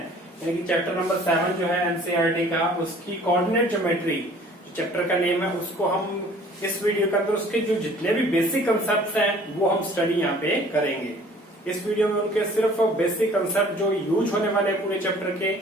यानी कि चैप्टर नंबर 7 जो है एनसीईआरटी का, उसकी कोऑर्डिनेट ज्योमेट्री चैप्टर का नेम है। उसको हम इस वीडियो के अंदर उसके जो जितने भी बेसिक कंसेप्ट हैं वो हम स्टडी यहाँ पे करेंगे। इस वीडियो में उनके सिर्फ बेसिक कंसेप्ट जो यूज होने वाले हैं पूरे चैप्टर के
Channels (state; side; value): normal; both; correlation 0.52